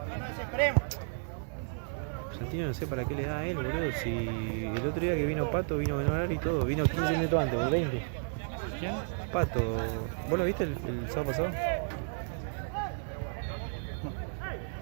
Santino no sé para qué le da a él, boludo. Si el otro día que vino Pato, vino Manuel y todo. Vino 15 minutos antes, o 20. ¿Quién? Pato. ¿Vos lo viste el sábado pasado?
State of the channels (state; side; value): silent; left; 56 dB below the other